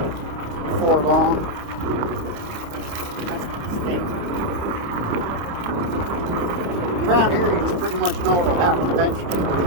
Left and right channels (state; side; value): late; left; 29 ms